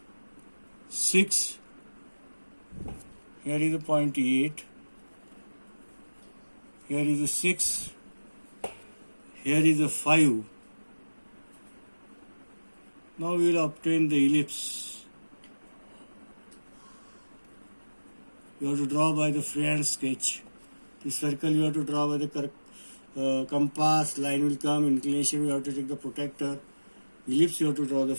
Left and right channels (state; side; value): inverted; both; correlation -1.00